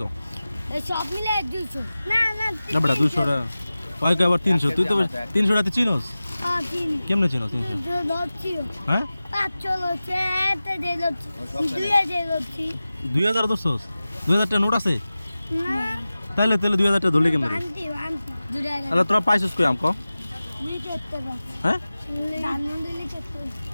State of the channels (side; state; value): both; inverted; correlation -0.96